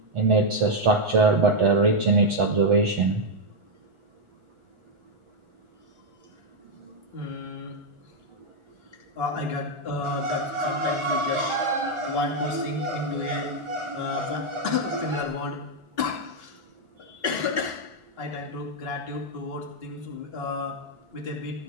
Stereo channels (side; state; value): left; late; 1.4 ms